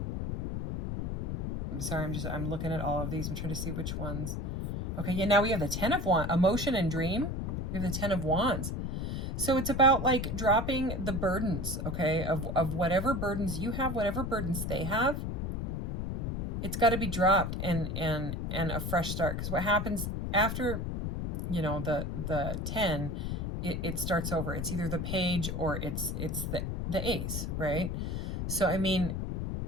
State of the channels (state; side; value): noise; left; rumble, 2 dB below the sound